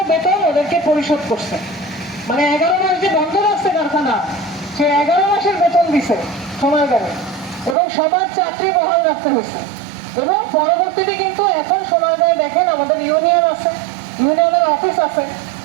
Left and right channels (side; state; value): left; drops out; at 7.8 s